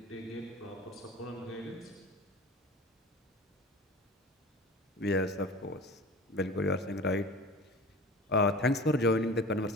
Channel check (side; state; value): both; normal; correlation 0.38